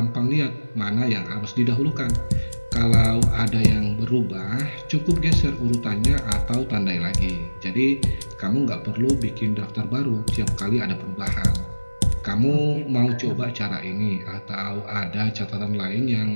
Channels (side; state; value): both; inverted; correlation -1.00